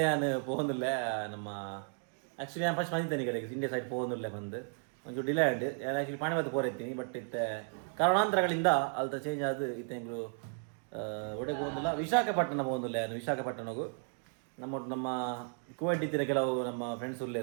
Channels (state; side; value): silent; left; 55 dB below the other